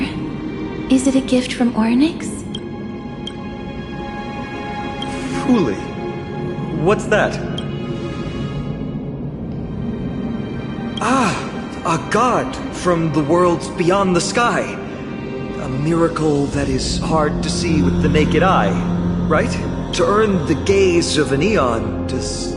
Is it a gift from Ornyx? Fuli. What's that? Ah, a god from the worlds beyond the sky. A miracle that is hard to see with the naked eye, right? To earn the gaze of an eon, does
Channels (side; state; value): both; identical; correlation 1.00